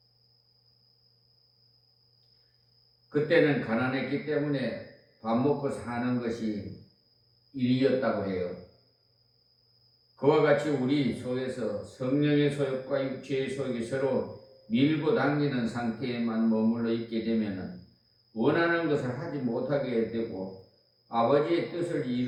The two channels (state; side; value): identical; both; correlation 1.00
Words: 그때는 가난했기 때문에 밥 먹고 사는 것이 일이었다고 해요. 그와 같이 우리 속에서 성령의 소욕과 육체의 소욕이 서로 밀고 당기는 상태에만 머물러 있게 되면 원하는 것을 하지 못하게 되고 아버지의 뜻을